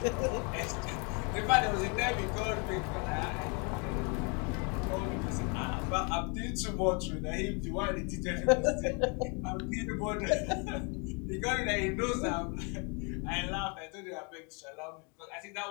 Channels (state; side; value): quieter; right; 34.2 dB